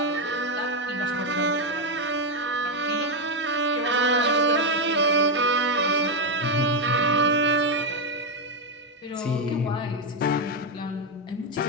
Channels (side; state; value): both; normal; correlation 0.05